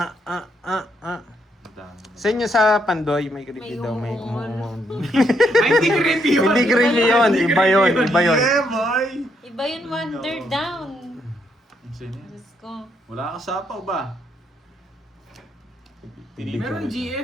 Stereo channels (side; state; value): both; normal; correlation 0.75